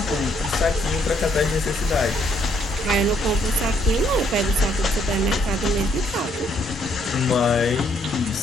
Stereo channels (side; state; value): both; normal; correlation 0.69